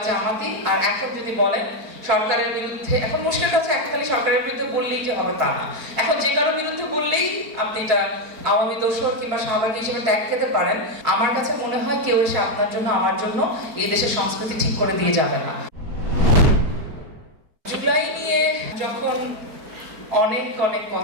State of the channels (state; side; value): late; left; 4.6 ms